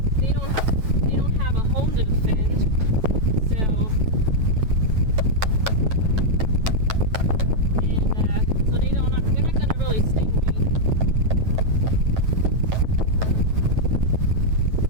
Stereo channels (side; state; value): left; late; 9.1 ms